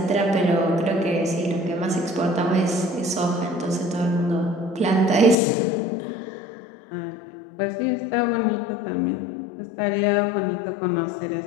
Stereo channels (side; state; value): right; drops out; at 5.4 s